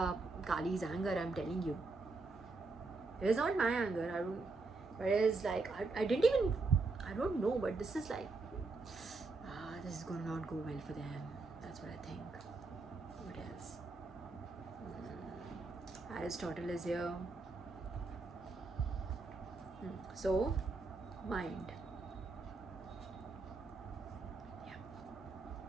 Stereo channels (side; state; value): left; quieter; 3.7 dB